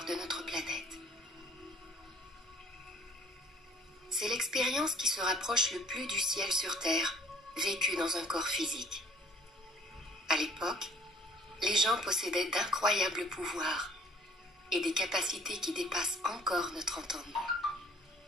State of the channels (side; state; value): both; normal; correlation 0.55